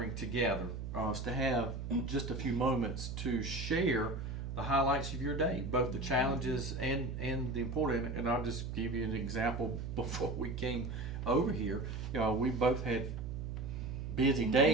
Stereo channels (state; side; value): noise; right; hum, 7 dB below the sound